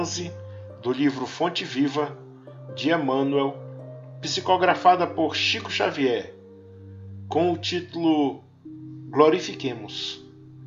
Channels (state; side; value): identical; both; correlation 1.00